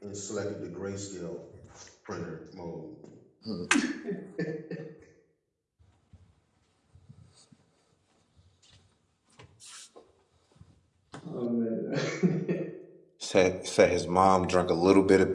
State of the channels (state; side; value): identical; both; correlation 1.00